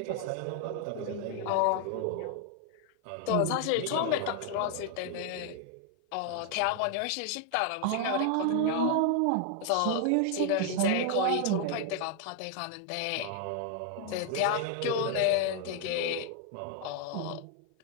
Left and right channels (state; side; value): different; both; correlation 0.00